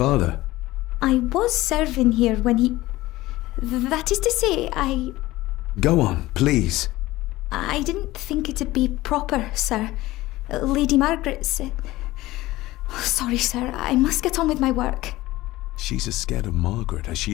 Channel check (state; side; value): quieter; right; 17.9 dB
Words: I was serving here when he... That is to say, Go on, please. I didn't think it'd be proper, sir. Lady Margaret said... Oh, sorry, sir. I must get on with my work. She's as scared of Margaret as she